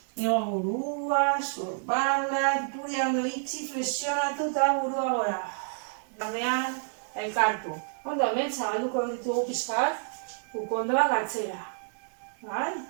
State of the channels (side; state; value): left; silent; digital silence